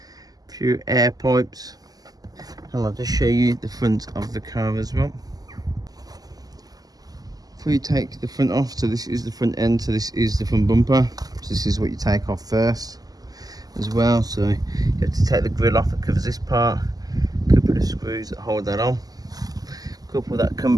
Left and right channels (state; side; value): late; left; 0.18 ms